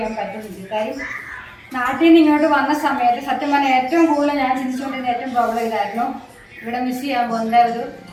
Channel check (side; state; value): both; identical; correlation 1.00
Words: പറ്റുന്നുണ്ട്. കാര്യം നാട്ടിൽ നിന്ന് ഇങ്ങോട്ട് വന്ന സമയത്ത് സത്യം പറഞ്ഞാൽ ഏറ്റവും കൂടുതൽ ഞാൻ ചിന്തിച്ചുകൊണ്ടിരുന്ന ഏറ്റവും പ്രോബ്ലം ഇതായിരുന്നു. ഇവിടെ മിസ് ചെയ്യാൻ പോകുന്ന ഒരു